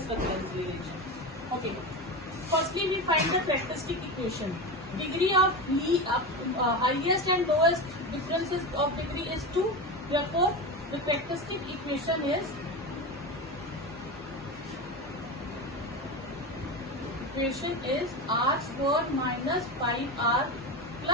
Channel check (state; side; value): normal; both; correlation 0.21